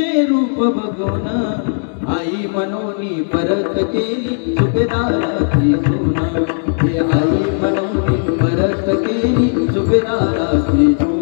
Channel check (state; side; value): silent; right; digital silence